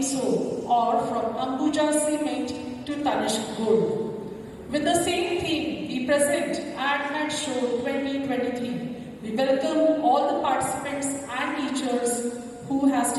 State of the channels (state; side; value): identical; both; correlation 1.00